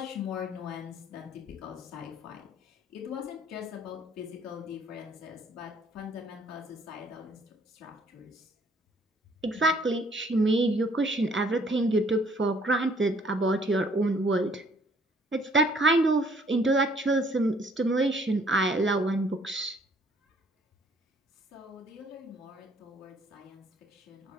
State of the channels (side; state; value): both; normal; correlation 0.61